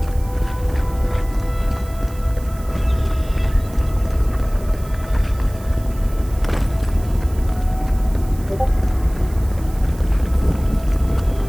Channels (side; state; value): right; noise; hiss, 21 dB below the sound